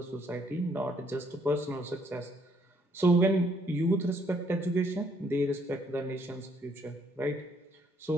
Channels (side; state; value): both; normal; correlation 0.68